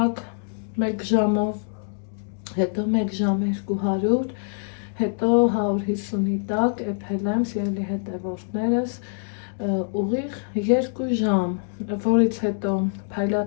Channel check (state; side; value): silent; right; digital silence